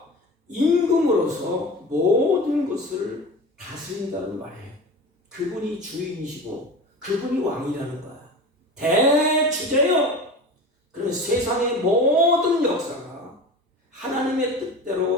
임금으로서 모든 것을 다스린다는 말이에요. 그분이 주인이시고 그분이 왕이라는 거야. 대주제요. 그러면 세상의 모든 역사가 하나님의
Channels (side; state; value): both; normal; correlation 0.33